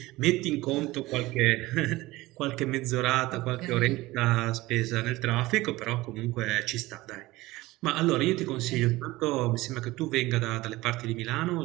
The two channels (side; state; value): left; quieter; 19.2 dB